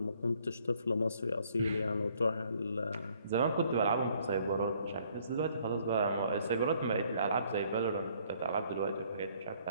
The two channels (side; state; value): both; inverted; correlation -0.63